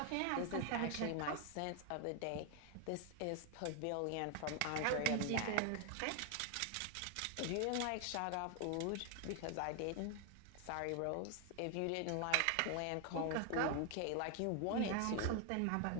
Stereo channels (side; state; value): both; different; correlation 0.00